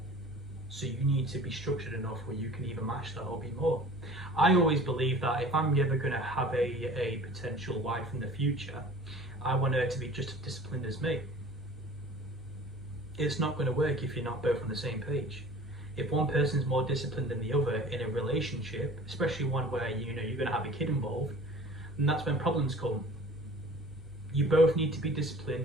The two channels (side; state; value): both; normal; correlation 0.45